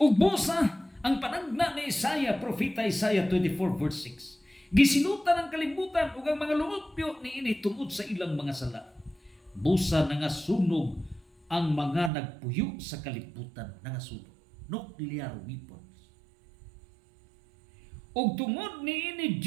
busa ang panagna ni Isaiah, propeta Isaiah 24 verse 6. Gisinutan ang kalibutan ug ang mga lumupyo niini tungod sa ilang mga sala. Busa nangasunog ang mga nagpuyo sa kalibutan, nangasunog. Nuclear weapons. Ug tungod niini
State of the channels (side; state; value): left; drops out; at 12.1 s